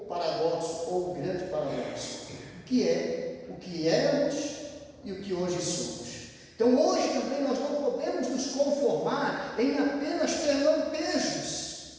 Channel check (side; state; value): both; identical; correlation 1.00